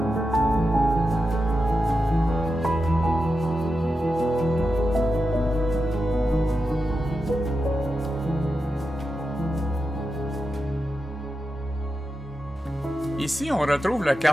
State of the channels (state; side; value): normal; both; correlation 0.89